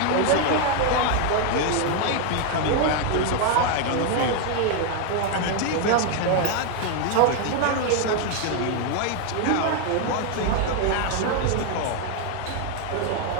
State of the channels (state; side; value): different; both; correlation 0.01